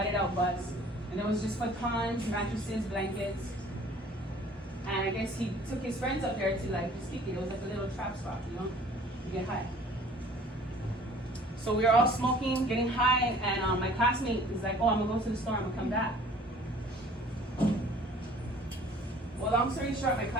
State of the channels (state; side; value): normal; both; correlation 0.51